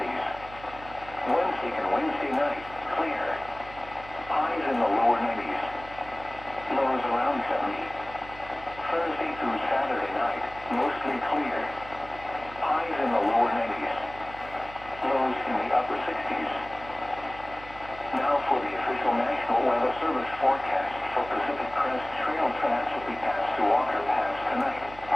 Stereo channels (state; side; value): noise; right; hum, 17 dB below the sound